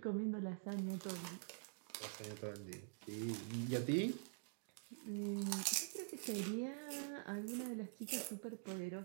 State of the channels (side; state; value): left; silent; digital silence